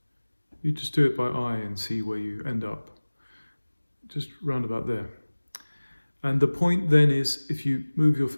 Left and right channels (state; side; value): inverted; both; correlation -1.00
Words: You just do it by eye and see where you end up. Just round about there. And the point then is, if you move your